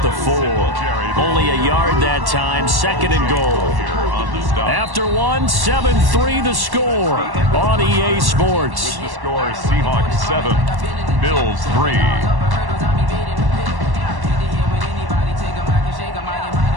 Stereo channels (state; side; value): late; left; 1.1 ms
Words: the 4. Only a yard that time. 2nd and goal. After 1, 7-3 the score on EA Sports. The score, Seahawks 7, Bills 3.